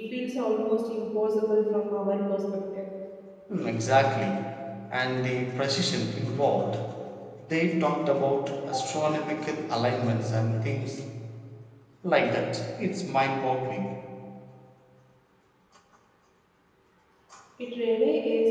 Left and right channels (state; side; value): identical; both; correlation 1.00